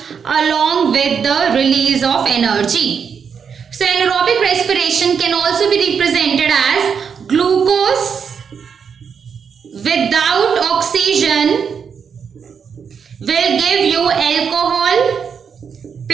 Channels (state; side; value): quieter; left; 6.7 dB